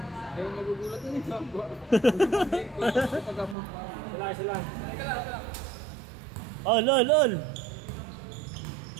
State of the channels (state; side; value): drops out; left; at 3.6 s